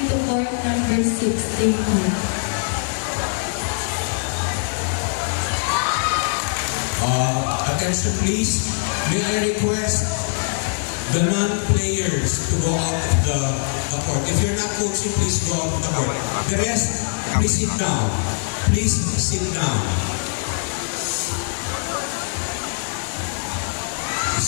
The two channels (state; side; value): silent; right; digital silence